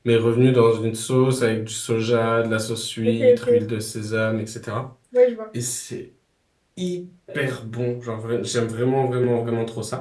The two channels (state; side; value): identical; both; correlation 1.00